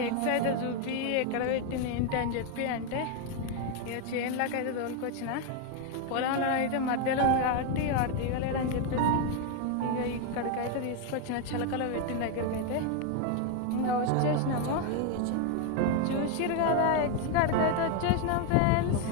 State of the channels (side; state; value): both; different; correlation 0.01